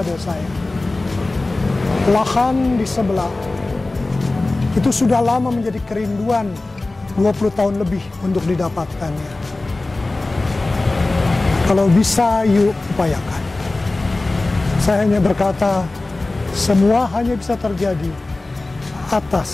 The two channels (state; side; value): quieter; right; 3.1 dB